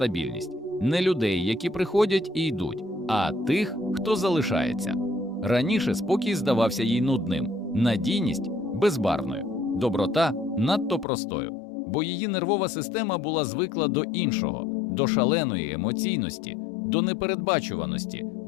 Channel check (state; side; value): drops out; right; at 11.1 s